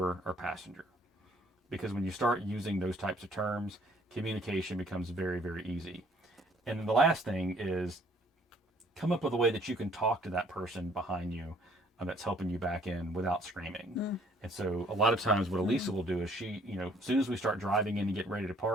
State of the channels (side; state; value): both; normal; correlation 0.61